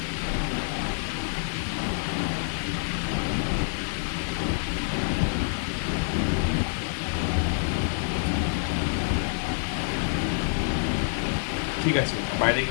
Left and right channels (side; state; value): right; silent; digital silence